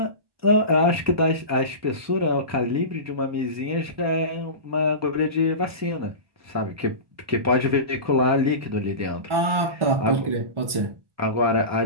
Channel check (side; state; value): left; late; 1.4 ms